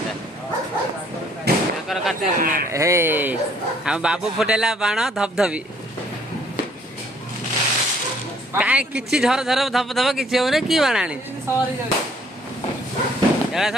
कार्तिक पूर्णिमा हे आम बाबू फुटेला बाण धपधपी कहीं किसी झर झर धप धप किसी हो कि बाण आनी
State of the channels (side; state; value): both; normal; correlation 0.62